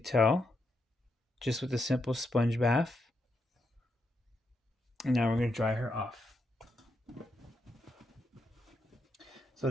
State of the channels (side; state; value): both; normal; correlation 0.82